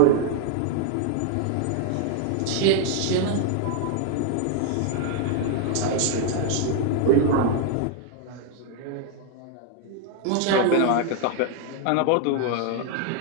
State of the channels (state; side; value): different; both; correlation 0.00